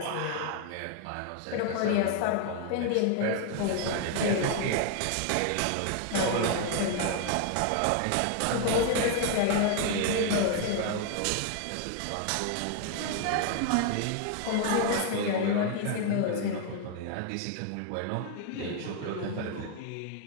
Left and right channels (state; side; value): different; both; correlation 0.00